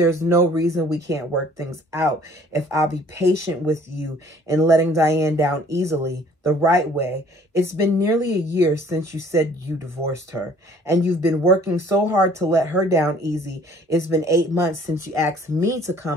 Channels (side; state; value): both; normal; correlation 0.56